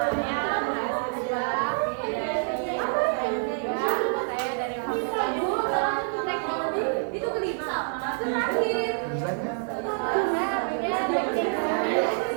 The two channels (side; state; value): left; silent; digital silence